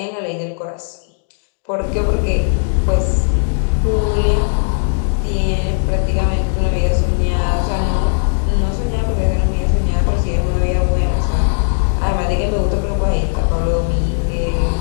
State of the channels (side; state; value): right; silent; digital silence